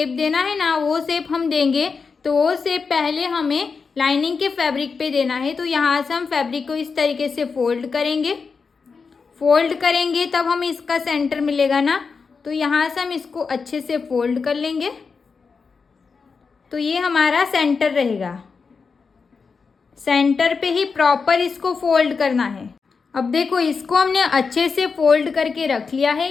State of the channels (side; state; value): right; quieter; 5.1 dB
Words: देना है ना वो शेप हम देंगे, तो वो शेप पहले हमें लाइनिंग के फैब्रिक पे देना है। तो यहाँ से हम फैब्रिक को इस तरीके से फोल्ड करेंगे तब हमें इसका सेंटर मिलेगा ना। तो यहाँ से हम इसको अच्छे से फोल्ड कर लेंगे, तो ये हमारा सेंटर रहेगा। सेंटर पे ही प्रॉपर इसको फोल्ड करना है। अब देखो इसको हमने अच्छे से फोल्ड करके रख लिया है।